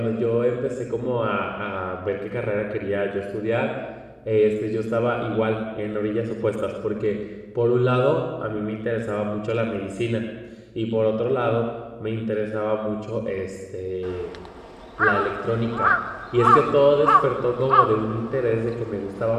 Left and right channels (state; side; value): identical; both; correlation 1.00